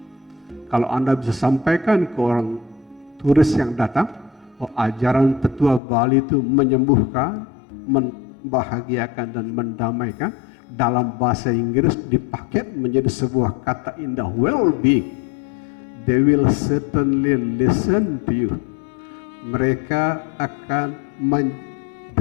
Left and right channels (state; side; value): drops out; right; at 5.8 s